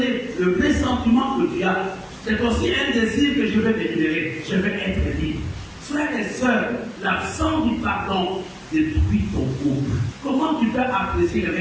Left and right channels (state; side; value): identical; both; correlation 1.00